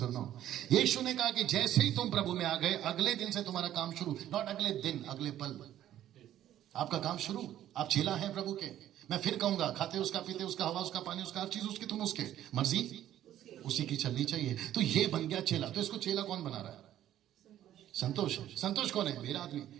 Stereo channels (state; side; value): quieter; left; 12.1 dB